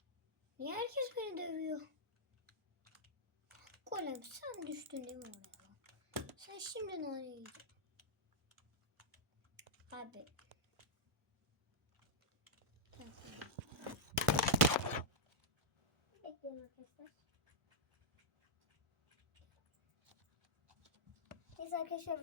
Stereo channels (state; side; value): normal; both; correlation -0.07